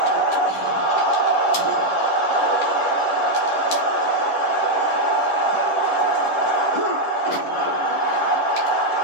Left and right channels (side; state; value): right; late; 11 ms